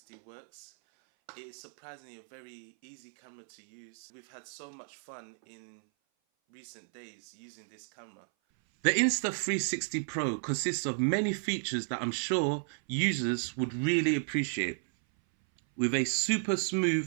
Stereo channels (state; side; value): silent; left; 56 dB below the other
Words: works. It is surprisingly a very easy camera to use. We've had so much fun in recent days using this camera. The Insta360 Pro consists of many features that I'm sure users would really appreciate. With a super